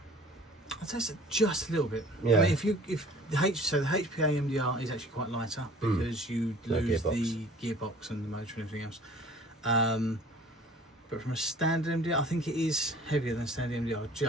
I'd say it's just a little bit. Yeah. I mean, if the HPA MDR is actually quite lighter because you No lose gearbox. the gearbox and the motor and everything else. But from a standard MDR, I think it is heavier than standard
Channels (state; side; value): normal; both; correlation 0.49